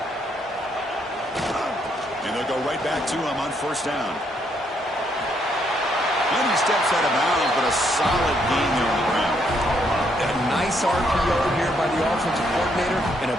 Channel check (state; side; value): normal; both; correlation 0.73